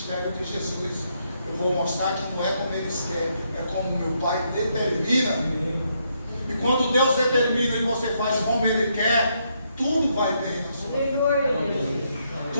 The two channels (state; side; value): inverted; both; correlation -0.76